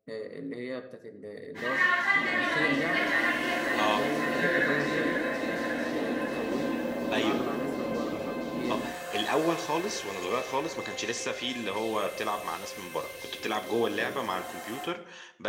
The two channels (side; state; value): both; identical; correlation 1.00